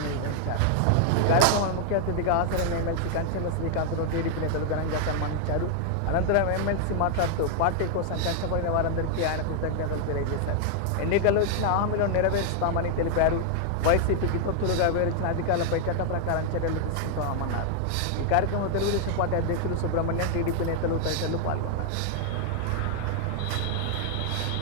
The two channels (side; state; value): both; different; correlation 0.00